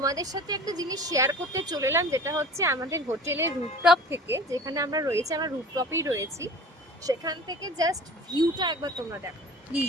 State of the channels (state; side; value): normal; both; correlation 0.40